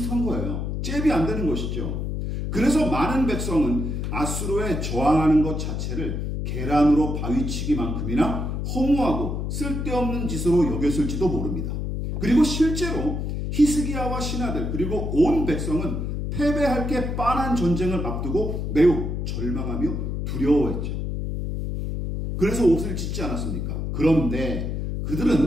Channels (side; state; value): left; noise; hum, 3 dB below the sound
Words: 거예요. 잽이 안 되는 것이죠. 그래서 많은 백성은 아수르에 저항하는 것 자체를 계란으로 바위치기만큼이나 허무하고 쓸데없는 짓으로 여겼을지도 모릅니다. 그리고 실제로 히스기야와 신하들 그리고 온 백성은 패배할 게 뻔한 전쟁을 앞두고 매우 절망하며 두려워했죠. 그래서 옷을 찢지 않았습니까? 그런데